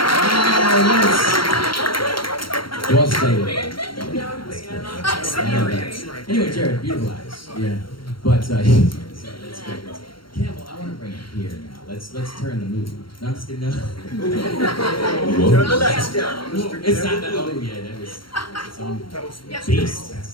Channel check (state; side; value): late; right; 0.73 ms